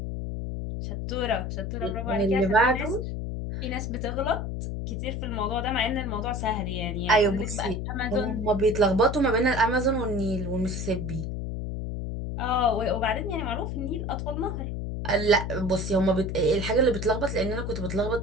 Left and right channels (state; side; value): noise; left; hum, 4 dB below the sound